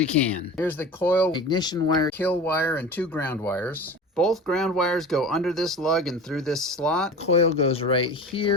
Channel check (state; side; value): normal; both; correlation 0.34